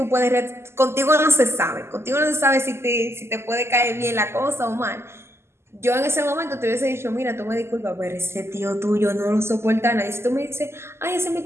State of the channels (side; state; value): left; late; 0.12 ms